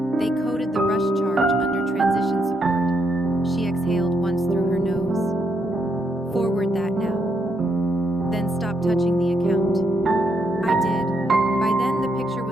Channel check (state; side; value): normal; both; correlation 0.77